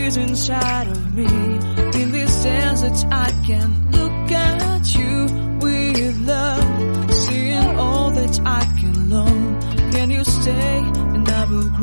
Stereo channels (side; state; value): both; inverted; correlation -1.00